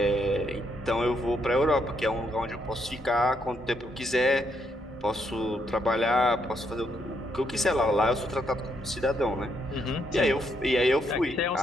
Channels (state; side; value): normal; both; correlation 0.75